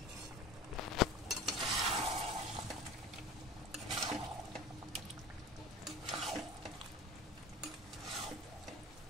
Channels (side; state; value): both; normal; correlation 0.37